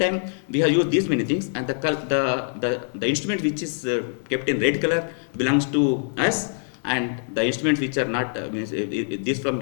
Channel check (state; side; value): silent; right; digital silence